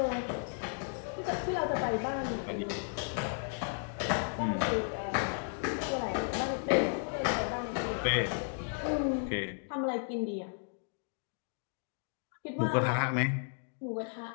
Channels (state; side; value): silent; right; 55 dB below the other